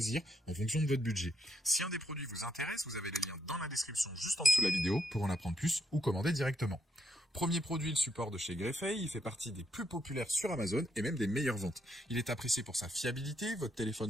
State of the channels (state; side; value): normal; both; correlation 0.77